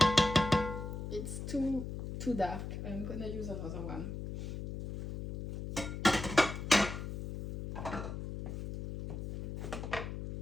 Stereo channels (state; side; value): noise; left; hum, 6 dB below the sound